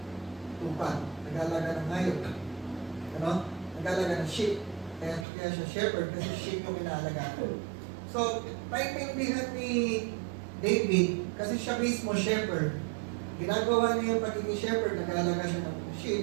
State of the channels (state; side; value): drops out; left; at 5.2 s